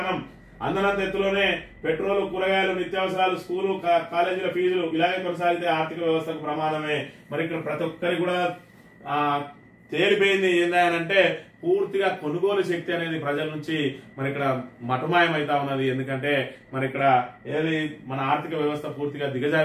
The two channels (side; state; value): both; identical; correlation 1.00